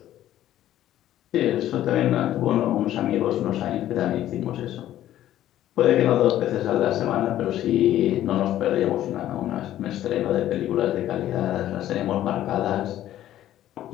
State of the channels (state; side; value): quieter; right; 12.8 dB